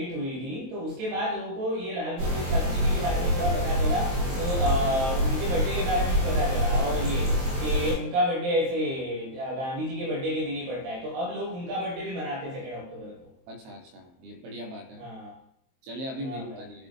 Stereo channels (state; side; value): late; left; 23 ms